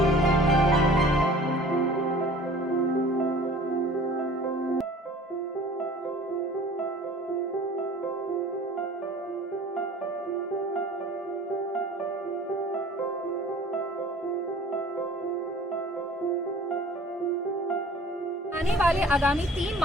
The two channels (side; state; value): both; normal; correlation 0.47